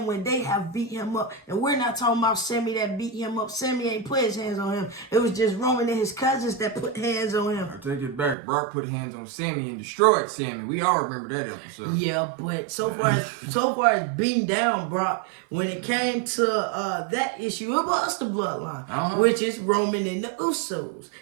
when they have beat him up? And we're not talking about Sammy that beat him up. Sammy ain't put his hands on him. It was just Roman and his cousins that put hands on him. I take it back. Brock put hands on Sammy and destroyed Sammy. We all remember that episode. Yeah, but so far as beating down Brock, when it came to that issue, it was the bloodline, which is Roman and the Usos.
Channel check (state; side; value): drops out; left; at 8.3 s